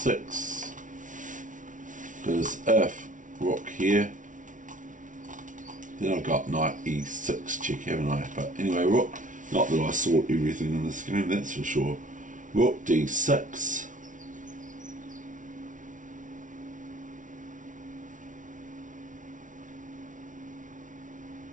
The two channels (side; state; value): left; late; 0.37 ms